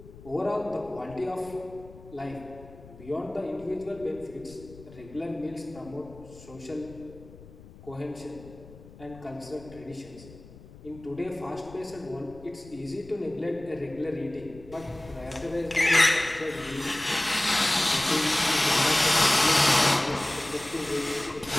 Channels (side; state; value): left; noise; rumble, 19 dB below the sound